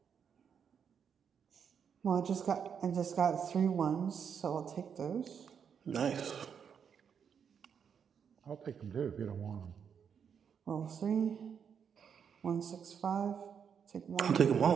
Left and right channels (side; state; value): left; quieter; 7.3 dB